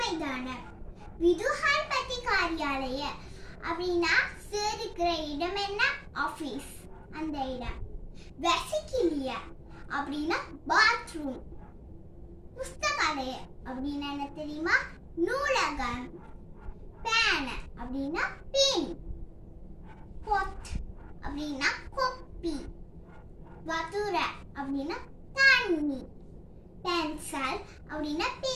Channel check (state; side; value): identical; both; correlation 1.00